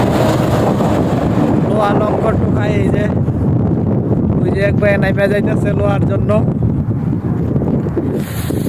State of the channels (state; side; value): identical; both; correlation 1.00